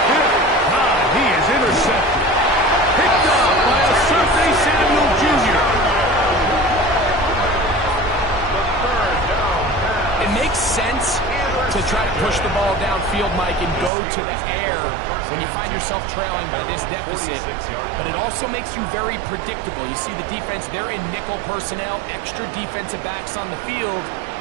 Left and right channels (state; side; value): drops out; left; at 13.9 s